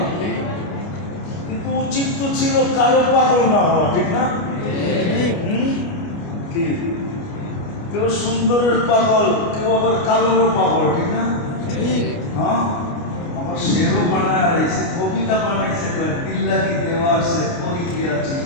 কিন্তু উচিত তো ছিল কারো পাগল না হওয়া, ঠিক না? কি কেউ সুন্দরের পাগল, কেউ আবার কালোরও পাগল, ঠিক না? হ্যাঁ, আমার শেরও বানায় রয়েছে, কবিতা বানাইছে, দিল্লা কি দেওয়ার সে পরি গিয়া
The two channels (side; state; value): right; late; 29 ms